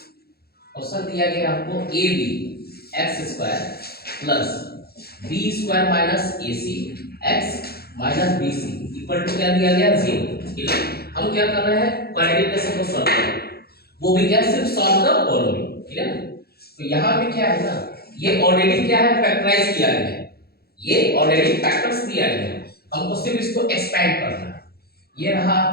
Question दिया गया आपको a b x square plus b square minus a c x minus b c equal to क्या दिया गया 0। ठीक है, हम क्या कर रहे हैं, क्वाड्रेटिक इक्वेशन को सॉल्व कर रहे हैं, वो भी क्या सिर्फ सॉल्व द फॉलोइंग। ठीक है ना, तो यहाँ पे क्या है ना, ये ऑलरेडी क्या है फैक्टराइज किया गया है, ये ऑलरेडी फैक्टर्स दिया गया है, हमको सिर्फ इसको एक्सपेंड करना है। ये रहा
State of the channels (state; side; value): late; right; 0.46 ms